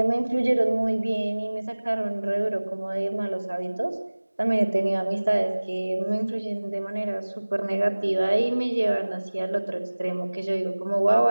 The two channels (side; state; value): both; inverted; correlation -1.00